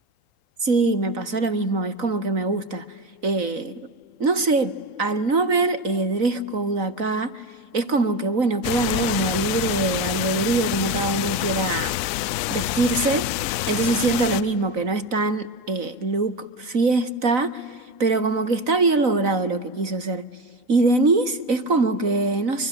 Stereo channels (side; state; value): left; late; 4.0 ms